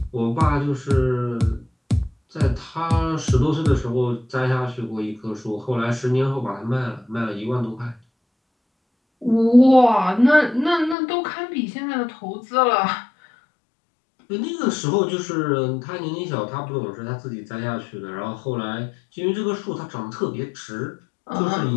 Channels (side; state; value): right; drops out; at 11.0 s